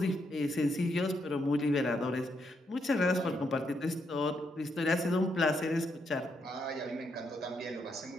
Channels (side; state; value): both; normal; correlation 0.78